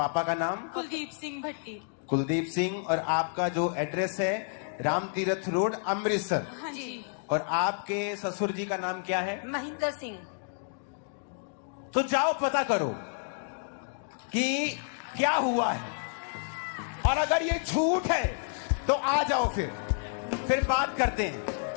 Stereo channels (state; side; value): silent; right; digital silence